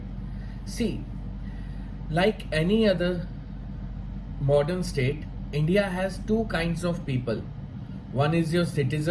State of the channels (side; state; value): both; identical; correlation 1.00